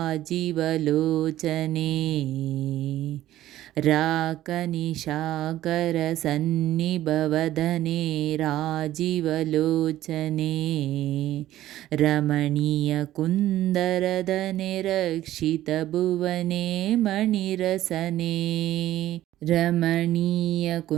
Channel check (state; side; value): quieter; left; 14.0 dB